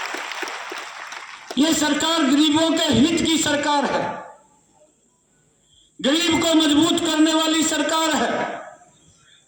ये सरकार गरीबों के हित की सरकार है, गरीब को मजबूत करने वाली सरकार है।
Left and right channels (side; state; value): both; identical; correlation 1.00